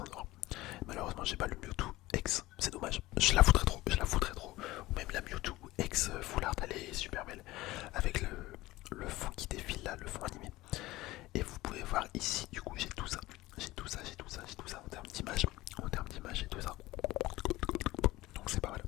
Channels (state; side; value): quieter; right; 18.3 dB